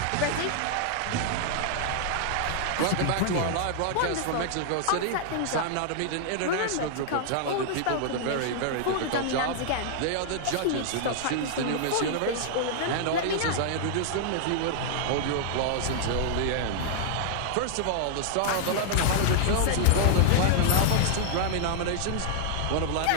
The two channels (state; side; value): different; both; correlation -0.01